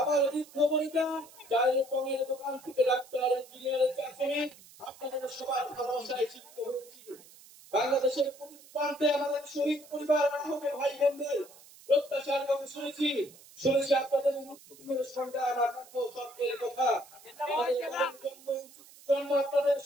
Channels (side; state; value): right; noise; hiss, 22 dB below the sound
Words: বৃদ্ধ বনিতা, চায়ের পঙের দোকান থেকে ডাক্তার, ইঞ্জিনিয়ার, চা শ্রমিক, আপনাদের সবার ভালোবাসায় শিক্ষিত হয়েছি। বাংলাদেশের প্রতিটি প্রান্তে আমাদের শহীদ পরিবার, আহত ভাই বোনদের প্রত্যাশার কথা শুনেছি। শুনেছি আপনাদের মুক্তির সংগ্রাম আকাঙ্ক্ষ স্বপ্নের কথা। আমাদের জন্ম আপনাদের